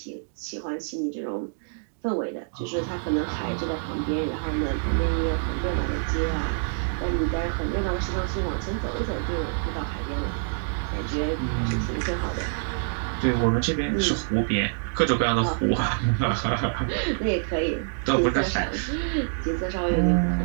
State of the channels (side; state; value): left; silent; digital silence